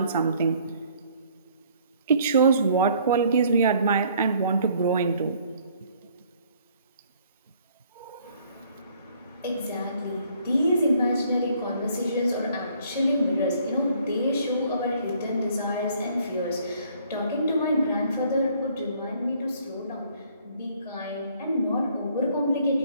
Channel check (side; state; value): both; inverted; correlation -0.61